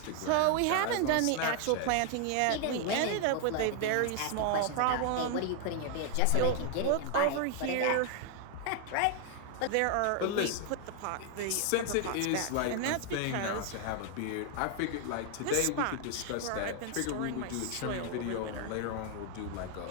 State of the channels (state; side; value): different; both; correlation 0.00